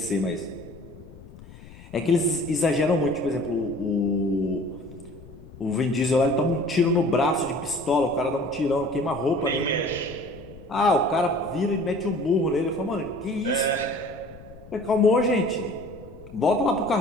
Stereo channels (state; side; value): noise; left; rumble, 19 dB below the sound